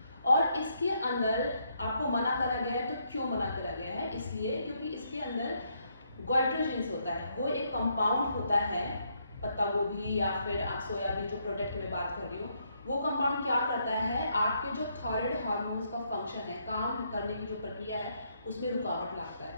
और इसके अंदर आपको मना करा गया है, तो क्यों मना करा गया है, इसलिए क्योंकि इसके अंदर गोइट्रोजेंस होता है, वो एक कंपाउंड होता है, पत्ता गोभी या फिर आप सोयाबीन जो प्रोडक्ट में बात कर रही हूँ, वो कंपाउंड क्या करता है, आपके जो थायराइड हार्मोन्स का फंक्शन है, काम करने की जो प्रक्रिया है उसमें रुकावट लाता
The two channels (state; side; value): inverted; both; correlation -0.75